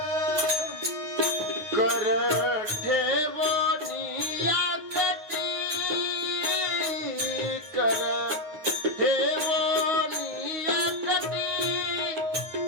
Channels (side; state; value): left; late; 9.5 ms